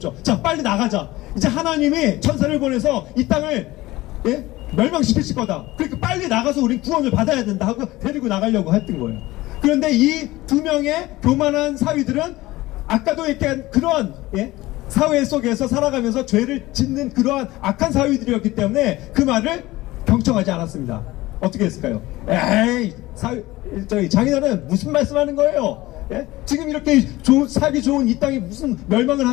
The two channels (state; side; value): quieter; right; 18.4 dB